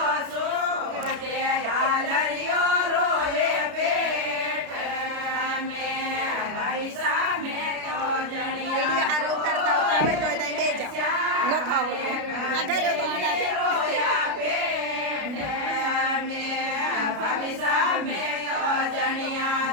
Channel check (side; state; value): left; late; 33 ms